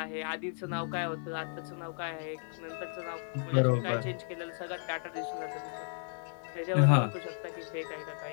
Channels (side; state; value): right; silent; 55 dB below the other